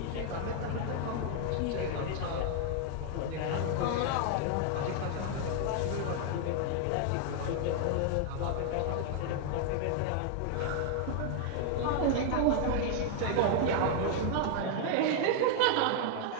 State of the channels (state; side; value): different; both; correlation 0.00